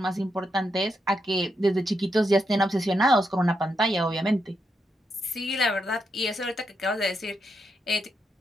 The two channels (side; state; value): both; normal; correlation 0.82